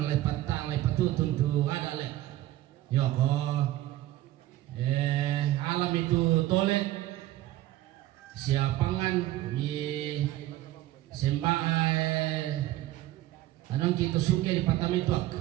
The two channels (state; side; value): quieter; left; 15.2 dB